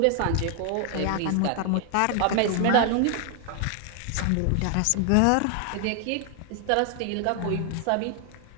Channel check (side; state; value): both; different; correlation 0.00